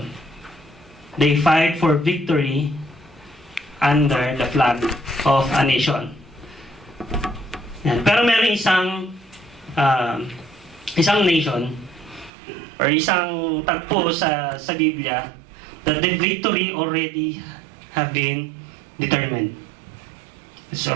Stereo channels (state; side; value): drops out; left; at 12.3 s